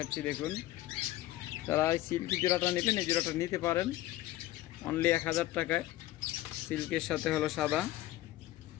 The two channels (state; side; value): quieter; right; 15.8 dB